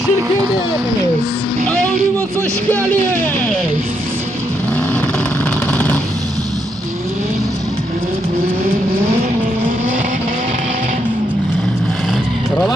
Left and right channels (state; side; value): normal; both; correlation 0.78